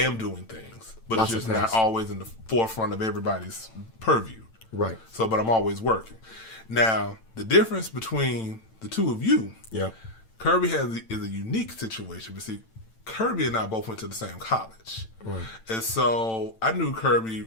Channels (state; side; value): late; right; 8.9 ms